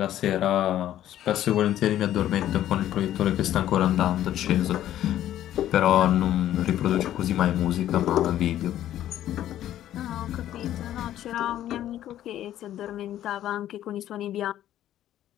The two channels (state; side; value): quieter; right; 12.3 dB